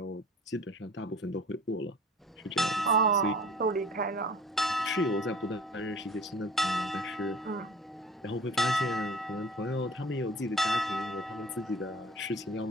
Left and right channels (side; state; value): both; normal; correlation 0.46